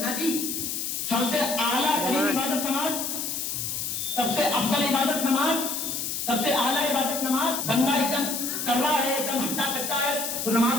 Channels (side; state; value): left; noise; hiss, 3 dB below the sound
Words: جی. سب سے اعلیٰ ترین عبادت نماز, سب سے افضل عبادت نماز, سب سے اعلیٰ عبادت نماز. بندہ ایک دم کر رہا ہے, ایک دم ہٹا کٹا ہے تو